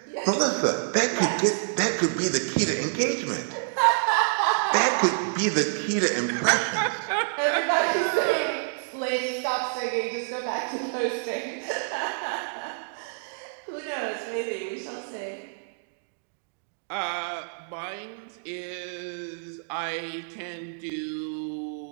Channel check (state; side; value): silent; left; digital silence